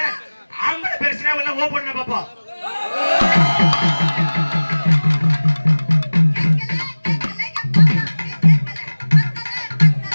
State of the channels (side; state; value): both; inverted; correlation -1.00